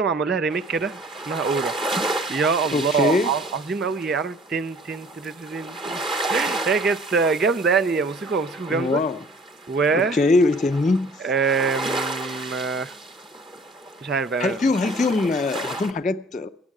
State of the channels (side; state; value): both; normal; correlation 0.52